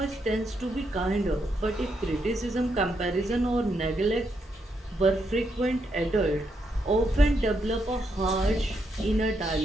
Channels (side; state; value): both; normal; correlation 0.79